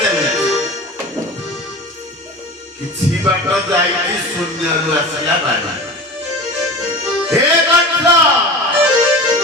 ଚାଲେ। କିଛି ବାଟ ଯାଇକି ଶୂନ୍ୟରୁ ଆସିଲା ବାଡ଼ି। ହେ କଂସ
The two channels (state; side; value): normal; both; correlation 0.33